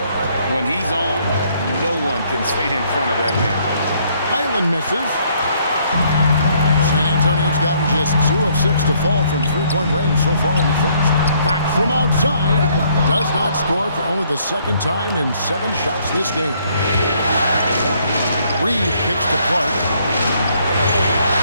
when he's on, no one can stay in front of that man. Highland misses. San Antonio's gotten just 2 of 6 to fall from three-point range so far in the first. Back from outside. Does not score for only the second time in 7 shots this game. Reed kicks to Clark.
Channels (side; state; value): both; inverted; correlation -0.66